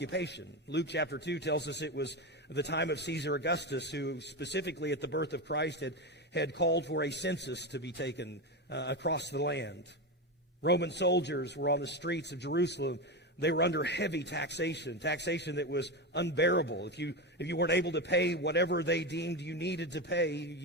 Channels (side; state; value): both; normal; correlation 0.16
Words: Luke chapter 2 tells us it was the time of Caesar Augustus, who specifically at the birth of Christ had called for a census to be taken across the land. Roman soldiers were on the streets of Jerusalem. They were under heavy taxation that was unbearable. If you weren't able to pay whatever they deemed you needed to pay,